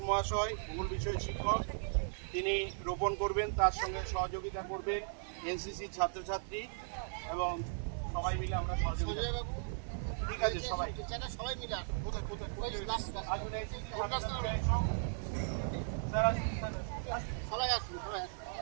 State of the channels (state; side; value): silent; left; digital silence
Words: মহাশয়, ভূগোল বিষয় শিক্ষক, তিনি রোপণ করবেন। তার সঙ্গে সহযোগিতা করবেন এনসিসি ছাত্রছাত্রী এবং সবাই মিলে আমরা সহযোগিতা। ঠিক আছে, সবাই সবাই মিলে